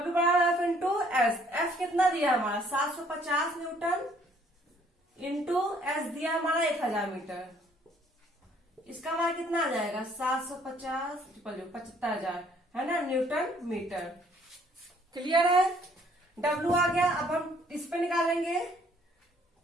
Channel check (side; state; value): both; normal; correlation 0.62